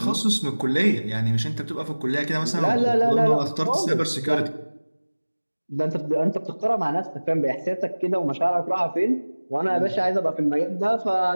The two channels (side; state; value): both; inverted; correlation -1.00